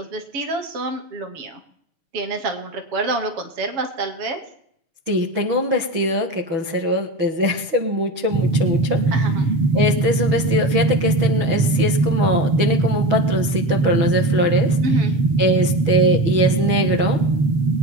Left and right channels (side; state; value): left; late; 6.2 ms